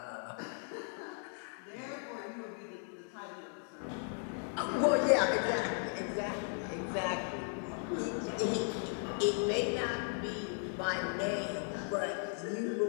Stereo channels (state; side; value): silent; right; 53 dB below the other